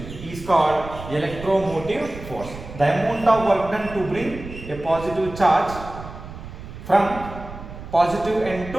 is called electromotive force. The amount of work done to bring a positive charge from positive end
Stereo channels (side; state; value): right; noise; rumble, 13 dB below the sound